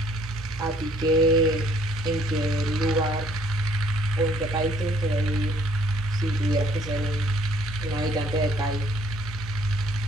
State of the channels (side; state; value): both; normal; correlation 0.62